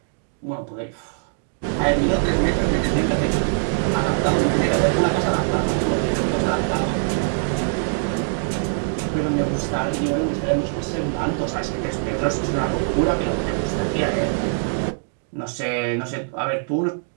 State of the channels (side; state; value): left; silent; digital silence